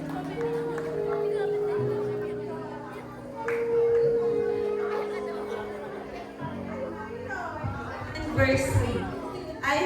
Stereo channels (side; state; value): both; identical; correlation 1.00